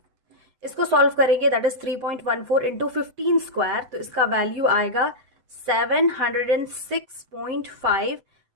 इसको सॉल्व करेंगे. दैट इज 3.14 इंटू 15 स्क्वायर, तो इसका वैल्यू आएगा 706.5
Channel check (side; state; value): left; late; 7.9 ms